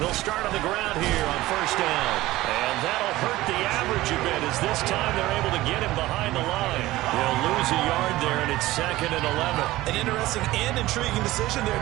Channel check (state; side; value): quieter; left; 17.3 dB